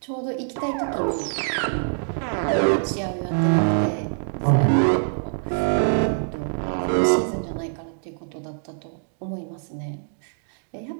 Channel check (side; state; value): left; silent; digital silence